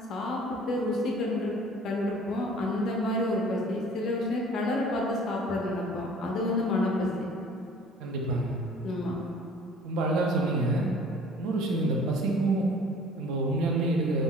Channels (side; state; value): both; normal; correlation 0.50